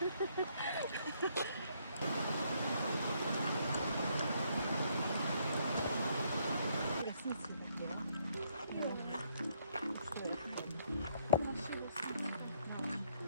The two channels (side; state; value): both; inverted; correlation -0.71